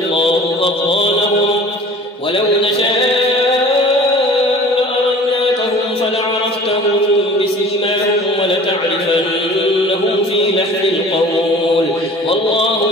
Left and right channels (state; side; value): normal; both; correlation 0.45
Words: أضغانهم ولو نشاء لأريناكهم فلعرفتهم بسيماهم ولتعرفنهم في لحن القول